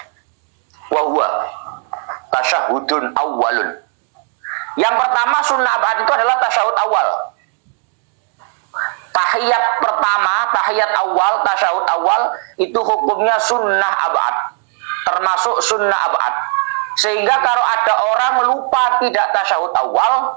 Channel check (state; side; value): quieter; left; 39.5 dB